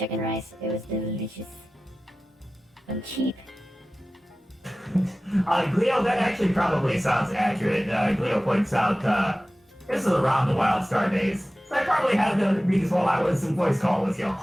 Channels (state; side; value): normal; both; correlation 0.96